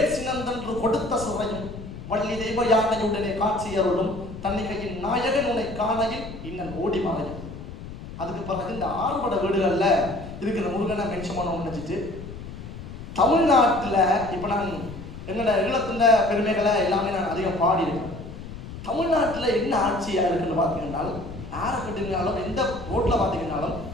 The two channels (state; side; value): noise; left; rumble, 11 dB below the sound